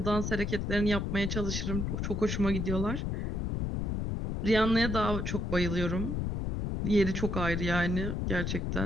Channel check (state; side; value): noise; left; rumble, 1 dB below the sound